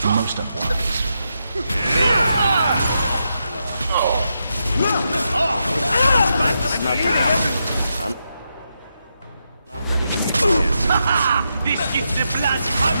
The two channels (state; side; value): inverted; both; correlation -0.84